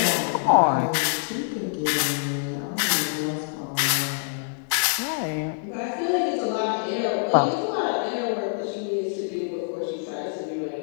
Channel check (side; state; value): right; silent; 62 dB below the other